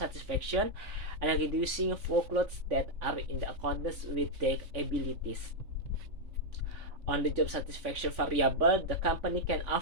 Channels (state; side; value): late; left; 3.5 ms